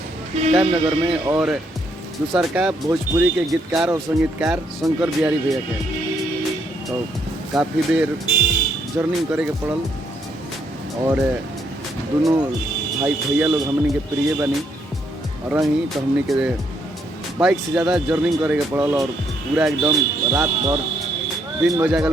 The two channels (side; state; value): both; normal; correlation 0.73